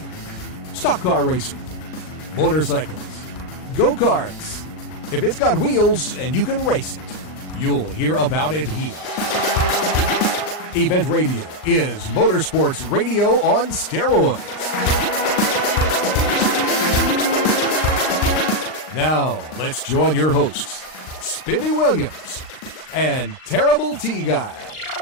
stock car racing, motorcycles, go-karts. If it's got wheels and you can race it, you'll hear about it here. Event Radio is motorsports radio on steroids. Now, let's join your hosts, Spivvy Williams and Terrible T Guy.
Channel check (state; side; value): late; right; 39 ms